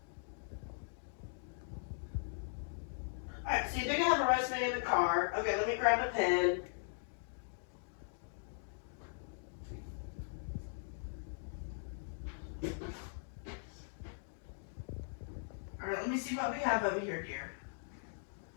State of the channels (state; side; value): silent; right; digital silence